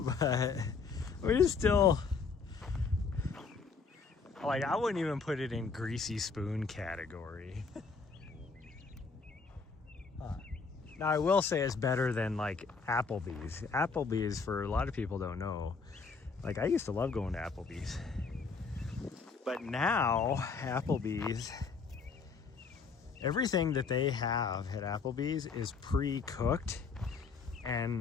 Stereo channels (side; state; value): right; quieter; 5.0 dB